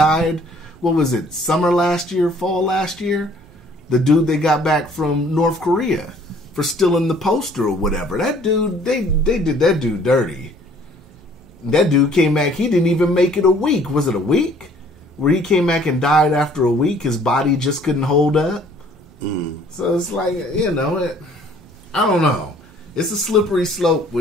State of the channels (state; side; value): normal; both; correlation 0.57